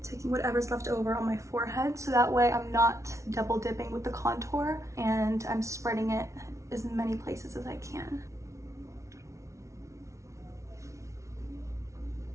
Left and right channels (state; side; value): late; left; 0.14 ms